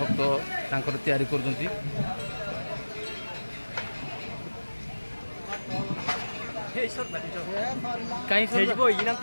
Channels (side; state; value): both; inverted; correlation -1.00